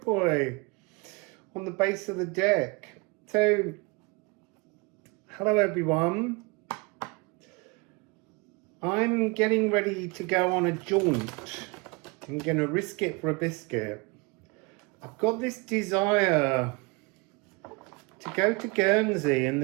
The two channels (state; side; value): quieter; left; 28.0 dB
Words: on the base of the deck. So, hello everyone. I'm getting ready to go on a jaunt. I'm going to risk it for a biscuit. I've got this desire to go to Guernsey in